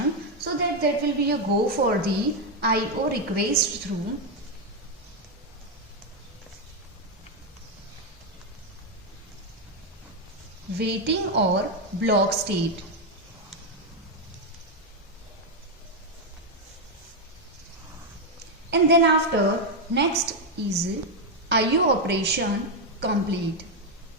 so that will be a go for the IO request through waiting or block state. And then after, next is IO operation complete.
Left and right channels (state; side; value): normal; both; correlation 0.03